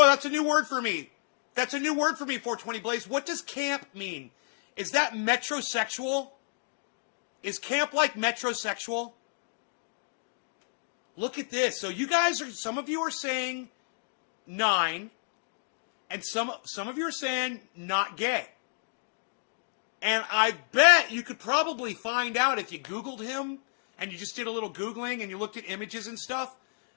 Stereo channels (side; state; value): right; silent; digital silence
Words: that's a new word for me. That's a new word for me, 420 Blaze. What does camp mean? Is that metrosexual? Is camp like metrosexual? Look at this. So some of you are saying 9... And some of you are saying not gay. And I bet you could probably find out if you Googled him and you just did a little Googling and you looked at images and stuff.